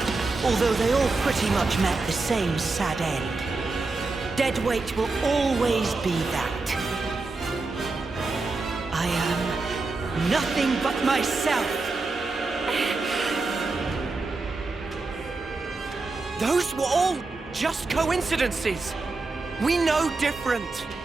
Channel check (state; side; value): quieter; left; 3.6 dB